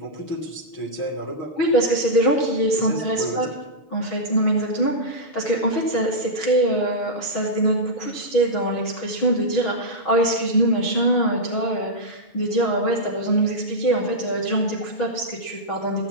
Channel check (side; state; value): right; late; 6.2 ms